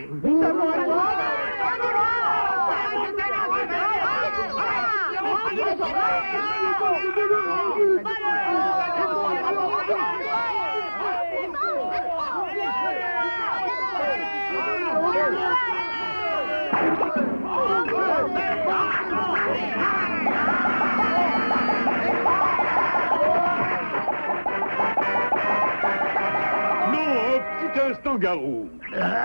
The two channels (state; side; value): inverted; both; correlation -1.00